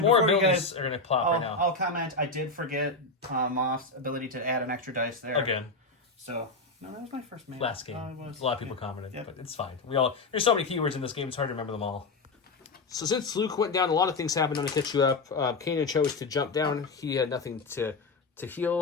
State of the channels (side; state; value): right; quieter; 3.6 dB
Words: then more before you abilities guys, are going to plop right now. I'll comment. I did forget Moff's ability to add an extra dice there. Again. So, no, that was my first man. Last game. It was. A lot of people commented, Yep. but it's fine. There's so many keywords in this game, it's hard to remember them all. So since Luke went down, a lot of things happened on to catch you up. Kanan chose to jump down. He had nothing to